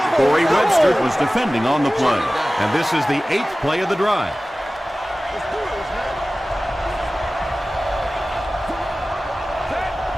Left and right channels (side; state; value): both; normal; correlation 0.97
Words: Corey Webster was defending on the play. And this is the 8th play of the drive.